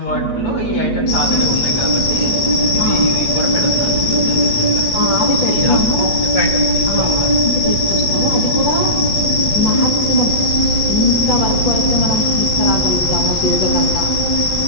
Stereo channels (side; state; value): right; late; 8.1 ms